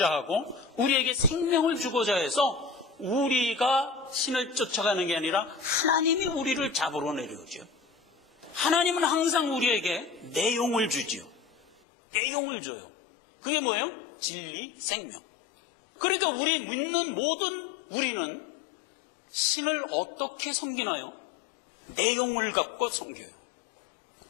하고 우리에게 생명을 주고자 해서 우리가 신을 쫓아가는 게 아니라 하나님이 우리를 잡으러 내려오죠. 하나님은 항상 우리에게 내용을 주지요. 내용을 줘요. 그게 뭐예요? 진리, 생명. 그러니까 우리 믿는 모든 우리는 신을 어떻게 섬기나요? 내용을 갖고 섬겨요.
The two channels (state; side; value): drops out; right; at 11.8 s